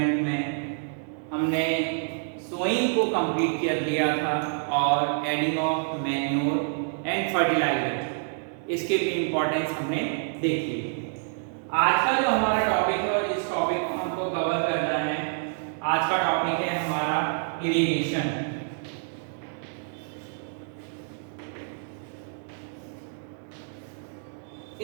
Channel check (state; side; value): silent; left; digital silence